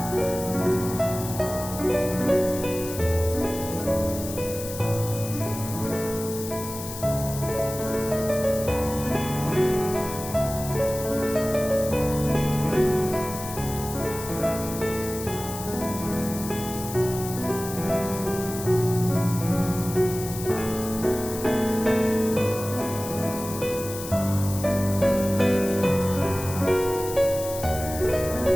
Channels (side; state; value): left; noise; hiss, 10 dB below the sound